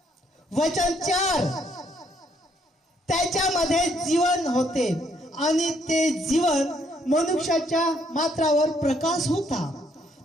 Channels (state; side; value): normal; both; correlation 0.69